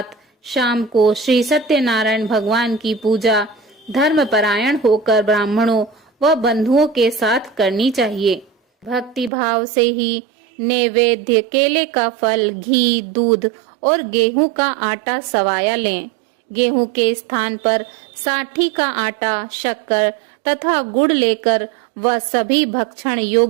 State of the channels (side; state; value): left; drops out; at 9.3 s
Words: शाम को श्री सत्यनारायण भगवान की पूजा धर्मपरायण होकर ब्राह्मणों व बंधुओं के साथ करनी चाहिए। भक्ति भाव से ही नैवेद्य, केले का फल, घी, दूध और गेहूं का आटा सवाया लें। गेहूं के स्थान पर साठी का आटा, शक्कर तथा गुड़ लेकर वह सभी भक्षण